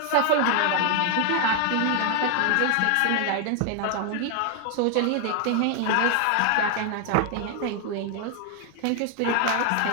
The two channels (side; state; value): both; different; correlation 0.01